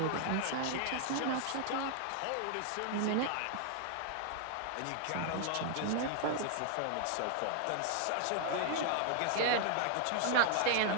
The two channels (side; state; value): both; different; correlation 0.00